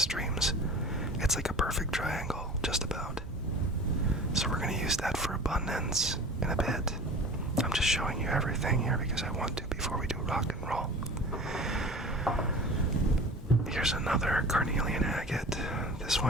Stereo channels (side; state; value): both; normal; correlation 0.38